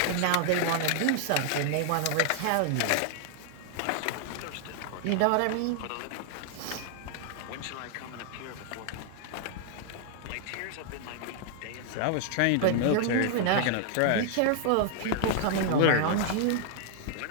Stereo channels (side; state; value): both; different; correlation 0.00